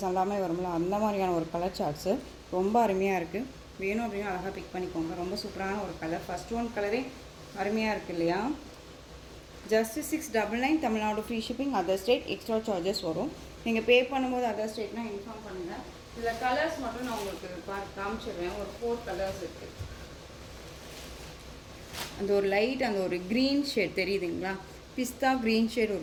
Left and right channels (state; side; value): identical; both; correlation 1.00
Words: எல்லாமே வரும்ல, அந்த மாதிரியான ஒரு கலர் சார்ட்ஸு ரொம்ப அருமையாக இருக்குது. வேணும் அப்படின்னா அழகாக பிக் பண்ணிக்கோங்க. ரொம்ப சூப்பரான ஒரு கலர். ஃபஸ்ட் ஒன் கலரே அருமையாக இருக்குது இல்லையா. Just 699, Tamil Nadu free shipping. Other state extra charges வரும். நீங்கள் பே பண்ணும்போது அதர் ஸ்டேட்னால் இன்ஃபார்ம் பண்ணுங்கள். இதில் கலர்ஸ் மட்டும் நான் உங்களுக்கு காமிச்சிடுவேன். ஒரு 4 கலர்ஸ் இருக்குது. அந்த ஒரு லைட், அந்த ஒரு க்ரீன் ஷேட் தெரியுதுங்களா, பிஸ்தா க்ரீன் ஷேட்